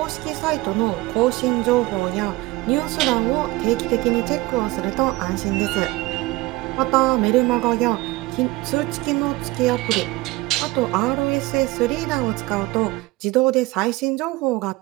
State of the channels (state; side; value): quieter; left; 20.5 dB